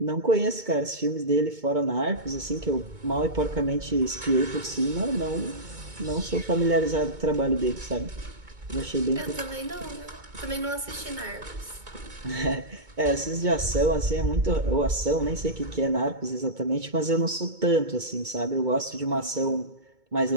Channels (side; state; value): left; late; 2.2 ms